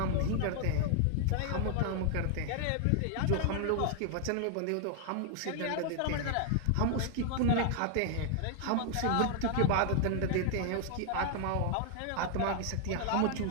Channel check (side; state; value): both; different; correlation 0.00